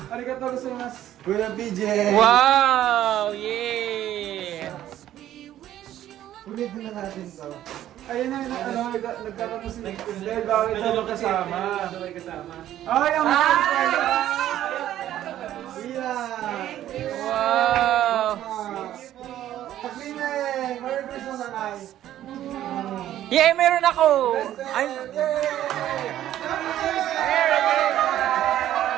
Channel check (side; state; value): left; quieter; 12.4 dB